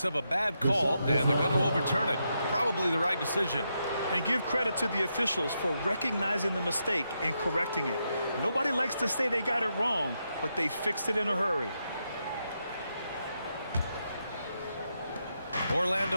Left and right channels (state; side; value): inverted; both; correlation -0.83